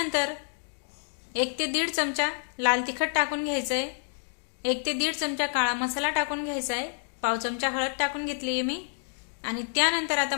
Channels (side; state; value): right; silent; digital silence